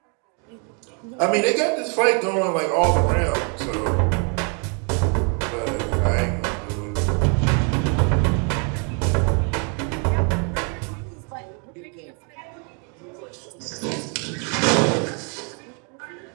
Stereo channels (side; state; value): left; quieter; 37.5 dB